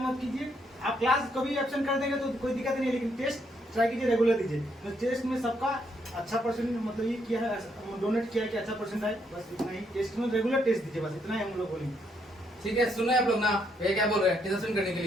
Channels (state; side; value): normal; both; correlation 0.74